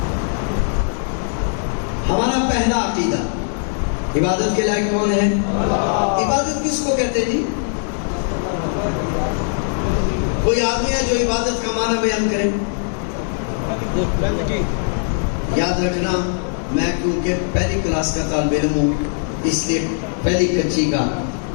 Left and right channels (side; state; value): right; silent; 66 dB below the other